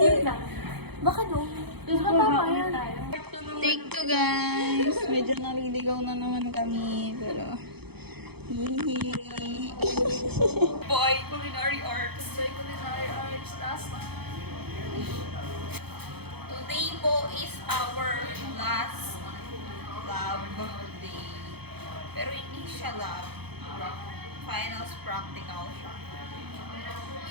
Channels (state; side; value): late; left; 0.97 ms